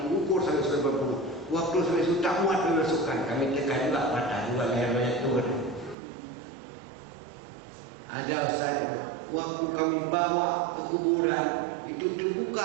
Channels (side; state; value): left; drops out; at 6.0 s